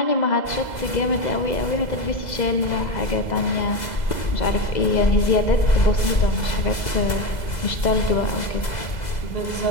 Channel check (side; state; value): right; late; 2.0 ms